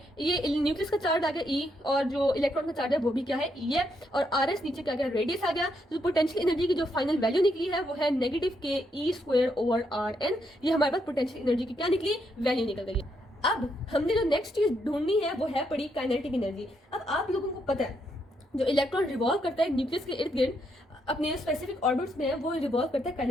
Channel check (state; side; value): normal; both; correlation 0.77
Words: ये न्यूक्लियस का चार्ज आ गया ई, और जो इलेक्ट्रॉन का चार्ज है वो भी क्या है, ई है, और आर एस नीचे क्या गया, रेडियस आ गया। तो पोटेंशियल एनर्जी की जो फाइनल वैल्यू निकली है वो है नेगेटिव के e square over are N. ये हमारे पास पोटेंशियल एनर्जी की क्या निकली, वैल्यू निकल गई। अब हमने जो नेक्स्ट चीज ढूंढनी है वो है पड़ी काइनेटिक एनर्जी। अब आप लोगों को पता है जो इलेक्ट्रॉन रिवॉल्व करता है न्यूक्लियस के इर्द गिर्द अपने स्पेसिफिक ऑर्बिट्स में, वो रिवॉल्व करता है